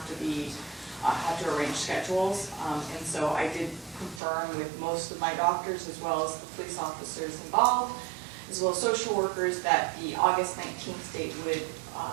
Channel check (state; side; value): drops out; left; at 4.2 s